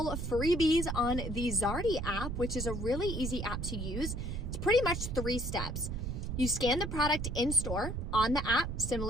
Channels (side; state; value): right; noise; rumble, 4 dB below the sound